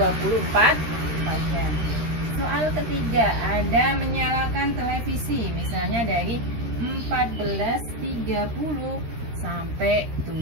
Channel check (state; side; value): late; left; 13 ms